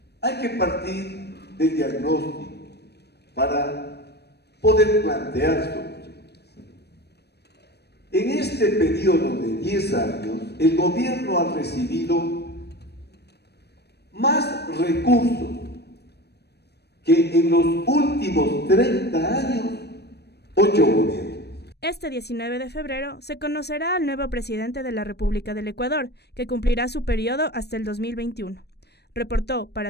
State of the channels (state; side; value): late; right; 0.48 ms